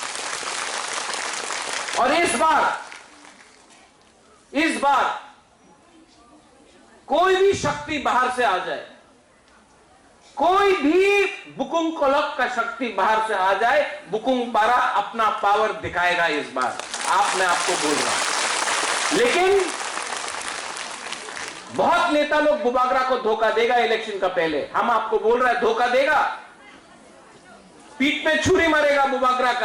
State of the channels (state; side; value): identical; both; correlation 1.00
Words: और इस बार कोई भी शक्ति बाहर से आ जाए, कोई भी बुकुंग कोलक का शक्ति बाहर से आ जाए, बुकुंग पारा अपना पावर दिखाएगा इस बार। मैं आपको बोल रहा हूं, लेकिन बहुत नेता लोग बुबागरा को धोखा देगा इलेक्शन का पहले। हम आपको बोल रहे हैं धोखा देगा, पीठ में छुरी मारेगा बुबागरा